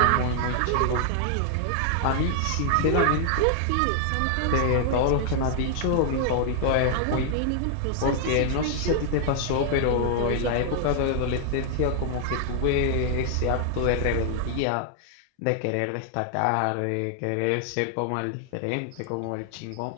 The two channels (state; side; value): different; both; correlation 0.00